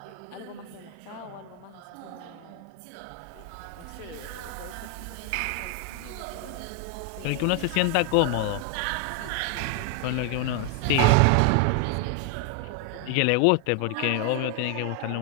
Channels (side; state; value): both; different; correlation 0.00